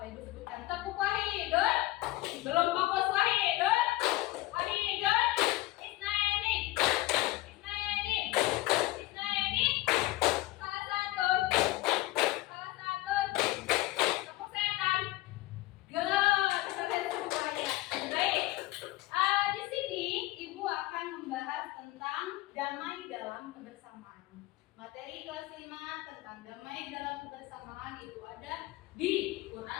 Ibu sebutkan tepuk wahidun? Belum fokus wahidun? Wahidun? Isnaini? Isnaini? Isnaini? Salah satu? Salah satu? Tepuk setan? Good, kalian semuanya. Baik. Di sini Ibu akan membahas tentang damai dalam kebersamaan. Materi kelas 5 tentang damai dalam kebersamaan itu ada di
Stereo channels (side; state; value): right; quieter; 18.5 dB